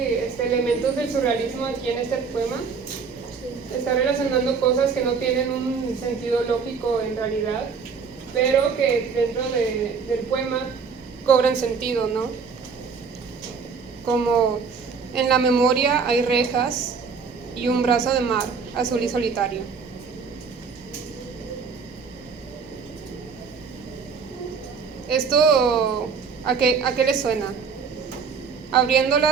elementos del surrealismo aquí en este poema. Está relacionando cosas que no tienen un sentido lógico en realidad, pero que dentro del poema cobran sentido, ¿no? Como en la memoria hay rejas y un brazo de mar azul y solitario. ¿Esto a qué le suena?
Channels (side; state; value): left; quieter; 5.6 dB